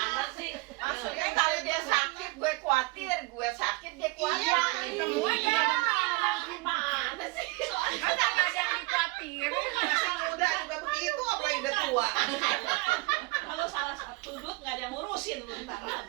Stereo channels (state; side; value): quieter; left; 23.8 dB